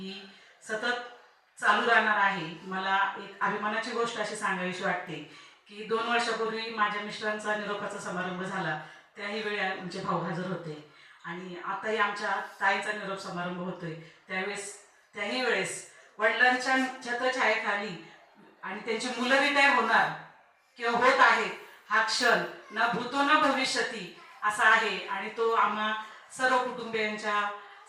सतत चालू राहणार आहे. मला एक अभिमानाची गोष्ट अशी सांगावीशी वाटते की 2 वर्षापूर्वी माझ्या मिस्टरांचा निरोपाचा समारंभ झाला. त्याही वेळी आमचे भाऊ हजर होते आणि आताही आमच्या ताईचा निरोप समारंभ होतोय. त्याही वेळेस वडिलांच्या छत्रछायेखाली आणि त्यांची मुलं रिटायर होणार किंवा होत आहेत हा क्षण न भूतो न भविष्यती असा आहे आणि तो आम्हा सर्व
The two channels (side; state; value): both; identical; correlation 1.00